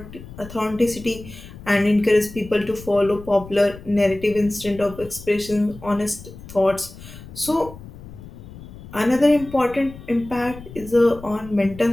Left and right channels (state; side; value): noise; left; rumble, 16 dB below the sound